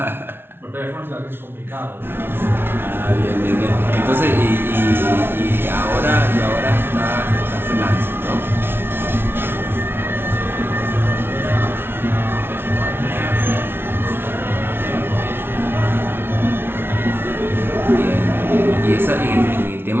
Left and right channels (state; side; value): late; left; 0.11 ms